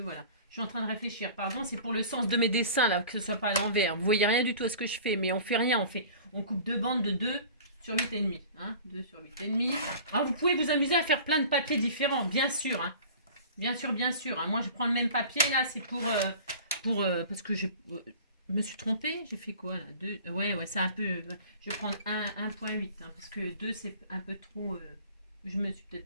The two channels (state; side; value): inverted; both; correlation -0.42